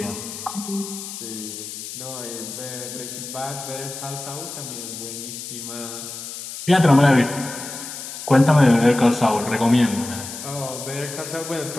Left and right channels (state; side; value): noise; left; hiss, 9 dB below the sound